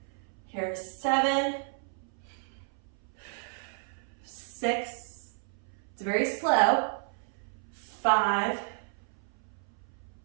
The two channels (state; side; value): silent; left; 56 dB below the other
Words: Here's 7. 6. It's very slow. 5.